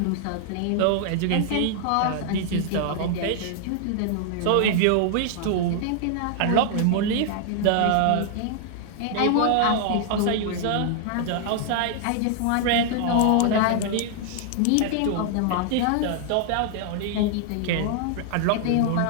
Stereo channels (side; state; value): both; different; correlation 0.00